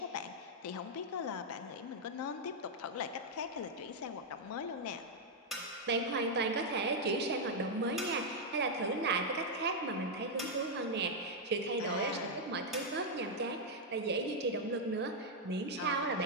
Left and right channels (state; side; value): normal; both; correlation -0.02